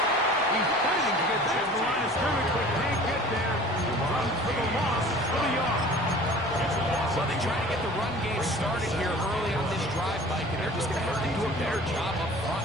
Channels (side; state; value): both; normal; correlation 0.45